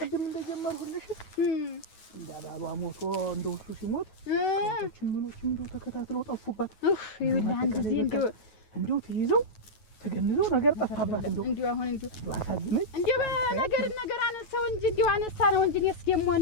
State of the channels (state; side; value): late; right; 9.3 ms